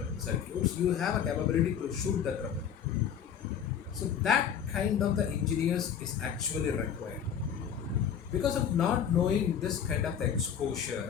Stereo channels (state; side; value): quieter; right; 8.3 dB